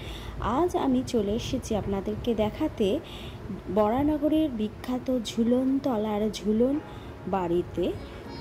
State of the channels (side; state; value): both; identical; correlation 1.00